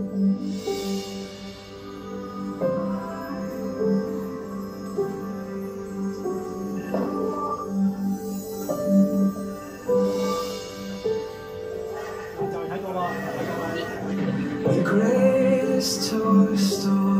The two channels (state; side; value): identical; both; correlation 1.00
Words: The greatest toy